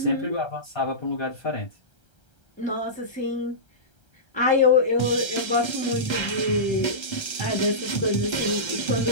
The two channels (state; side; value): late; right; 1.3 ms